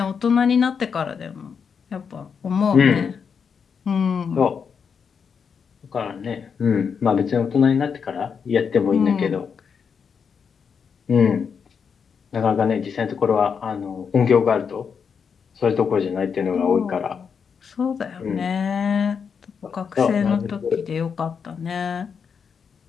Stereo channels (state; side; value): quieter; right; 6.4 dB